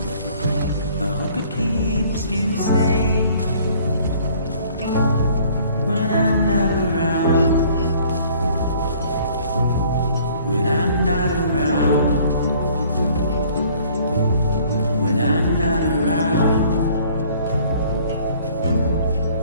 I hope it keeps you safe when I'm not around. When I'm not around, when I'm not around,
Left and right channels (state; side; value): inverted; both; correlation -0.56